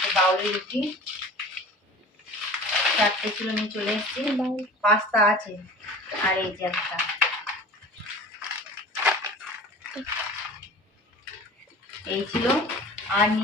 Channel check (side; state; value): both; normal; correlation 0.40